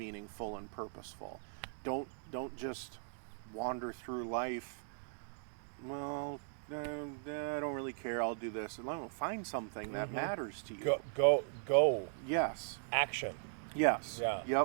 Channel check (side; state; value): left; silent; digital silence